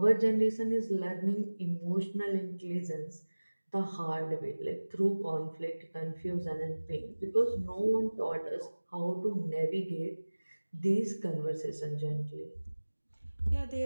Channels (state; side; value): inverted; both; correlation -1.00